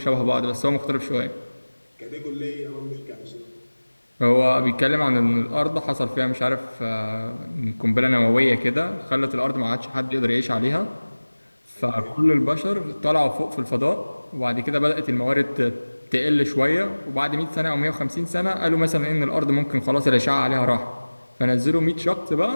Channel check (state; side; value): inverted; both; correlation -1.00